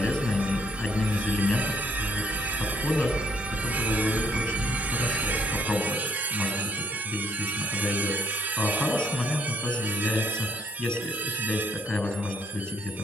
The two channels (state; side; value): normal; both; correlation 0.67